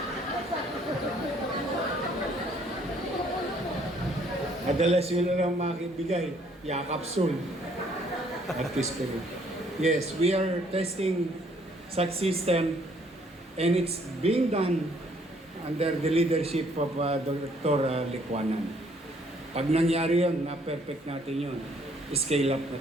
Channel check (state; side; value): normal; both; correlation 0.64